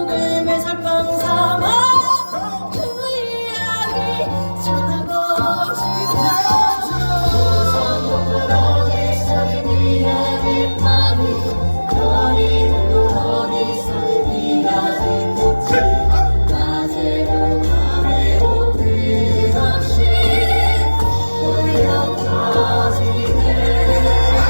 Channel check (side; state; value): both; inverted; correlation -1.00